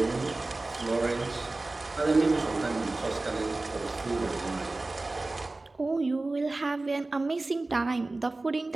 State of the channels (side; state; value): left; quieter; 3.1 dB